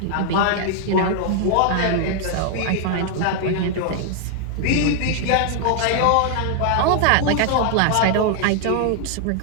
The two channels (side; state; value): both; different; correlation 0.00